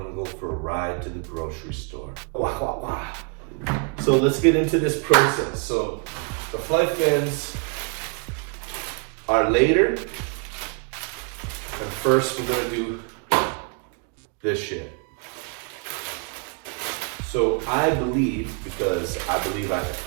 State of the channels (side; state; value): left; quieter; 37.6 dB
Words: go for a ride to the grocery store. Wah, wah, wah. So let's get into this process. So the flight fins are later. And first we're gonna do this shit. So I believe, because I believe I can